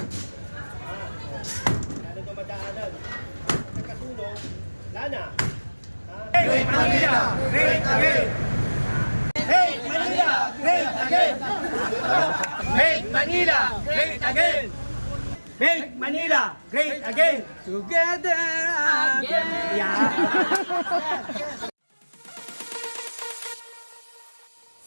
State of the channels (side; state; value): both; inverted; correlation -1.00